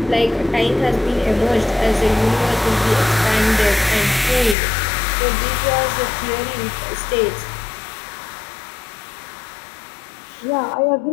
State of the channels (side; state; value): right; drops out; at 4.5 s